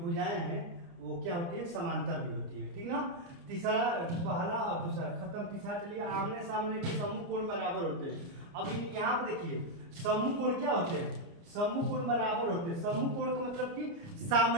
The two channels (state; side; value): late; left; 29 ms